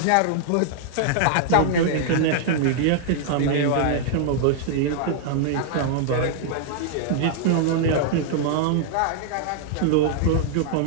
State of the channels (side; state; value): both; different; correlation -0.01